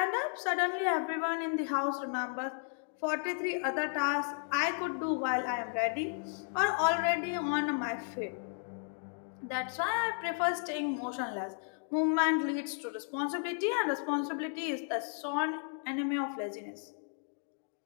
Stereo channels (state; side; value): silent; right; 55 dB below the other